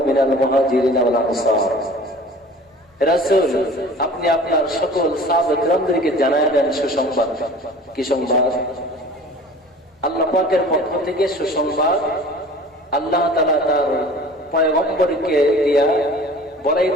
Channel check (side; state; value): both; normal; correlation 0.44